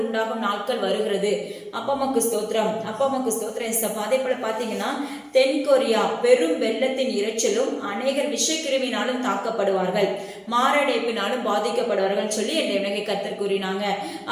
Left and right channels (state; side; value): identical; both; correlation 1.00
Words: உண்டாகும் நாட்கள் வருகிறது. அப்பா அம்மாக்கு ஸ்தோத்திரம். அப்பா அம்மாக்கு ஸ்தோத்திரம் சப்பா. அதே போல பாத்தீங்கன்னா தென்கொரியா பெரும் வெள்ளத்தின் இரைச்சலும் அநேகர் விஷக்கிருமினாலும் தாக்கப்படுவார்கள், மாரடைப்பினாலும் பாதிக்கப்படுவார்கள் சொல்லி என் தேவனாகிய கர்த்தர் கூறினாங்க.